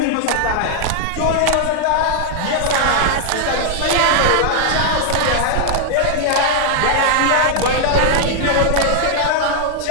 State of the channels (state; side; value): different; both; correlation 0.00